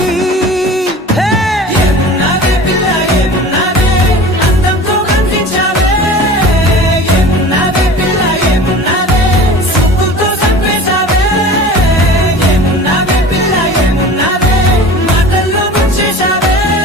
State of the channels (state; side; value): normal; both; correlation 0.39